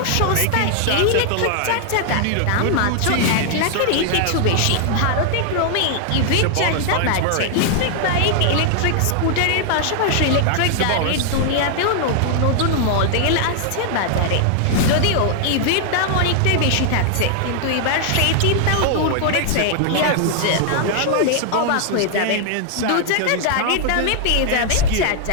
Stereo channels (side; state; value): both; different; correlation 0.00